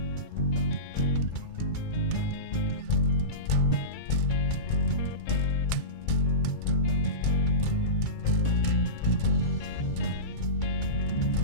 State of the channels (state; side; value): late; right; 2.3 ms